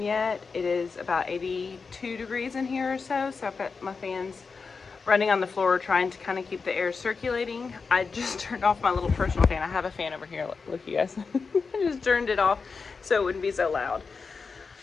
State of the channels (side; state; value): right; quieter; 4.8 dB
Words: yet. It is about 82 degrees in here or so. So I've got my fans running on the floor, trying to kind of keep the air circulating. I just turned off my little personal fan. I have a fan over here. Look, you guys. I just turned it off so it wouldn't be so loud.